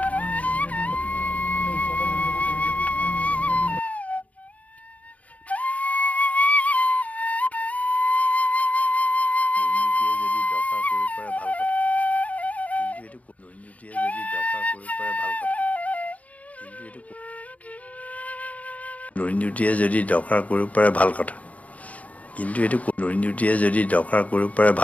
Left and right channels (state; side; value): late; right; 0.070 ms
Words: দুৰ্নীতিয়ে যদি দখল কৰিব পাৰে ভাল কথা, কিন্তু এইটো দুৰ্নীতিয়ে যদি দখল কৰিব পাৰে